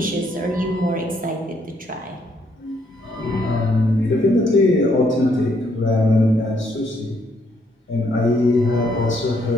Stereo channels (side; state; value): both; normal; correlation 0.71